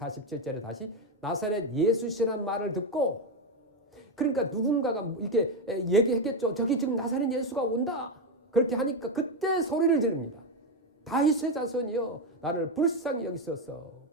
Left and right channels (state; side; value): normal; both; correlation 0.08